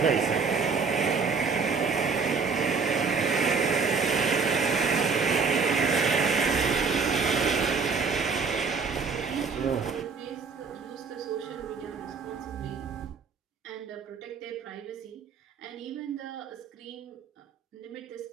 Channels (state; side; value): quieter; left; 5.2 dB